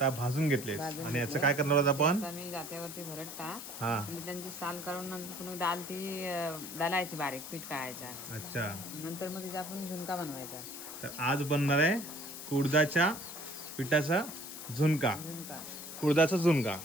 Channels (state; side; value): noise; left; hiss, 10 dB below the sound